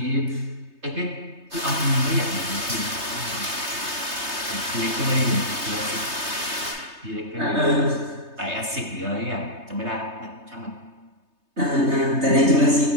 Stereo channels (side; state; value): left; late; 3.3 ms